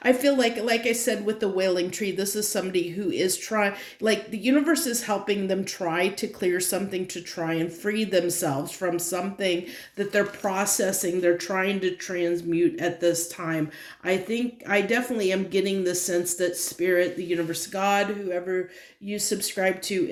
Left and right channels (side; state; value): both; identical; correlation 1.00